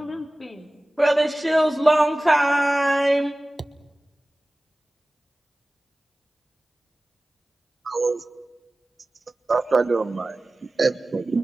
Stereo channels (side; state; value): both; normal; correlation 0.97